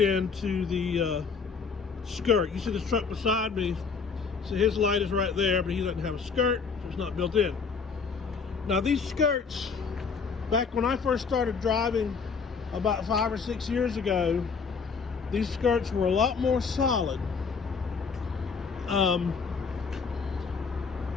the skirt. You see this truck beside me, so his light is right there, but he doesn't have a skirt, so it's not built in. Now these skirts, back when I first started driving about 5 or 6 years ago, these skirts were a lot more solid.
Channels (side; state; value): right; quieter; 5.4 dB